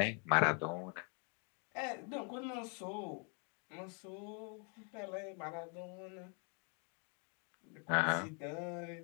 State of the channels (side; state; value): right; quieter; 38.2 dB